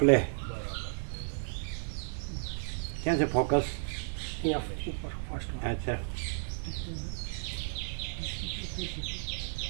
ક્યાં છે ફોકસ? અચ્છા,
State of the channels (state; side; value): silent; left; digital silence